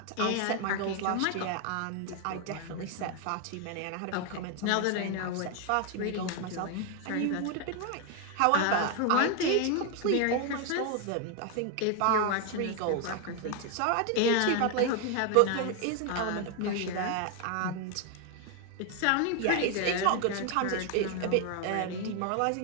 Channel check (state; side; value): different; both; correlation 0.01